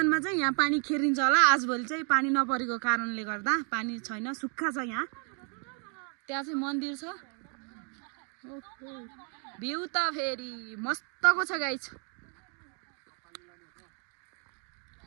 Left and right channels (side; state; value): left; quieter; 39.8 dB